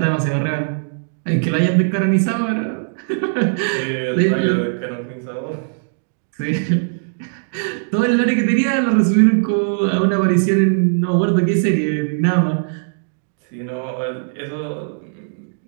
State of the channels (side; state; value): left; silent; digital silence